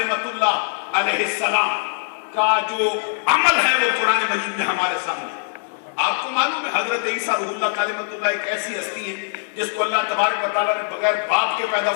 اللہ علیہ السلام کا جو عمل ہے وہ قرآن مجید میں ہمارے سامنے ہے۔ آپ کو معلوم ہے حضرت عیسیٰ روح اللہ کلمۃ اللہ ایک ایسی ہستی ہے جس کو اللہ تبارک و تعالیٰ نے بغیر باپ کے پیدا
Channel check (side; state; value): right; silent; digital silence